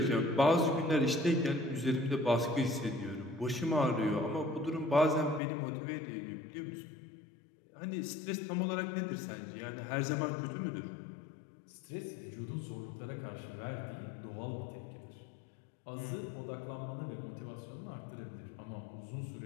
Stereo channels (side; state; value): right; drops out; at 5.4 s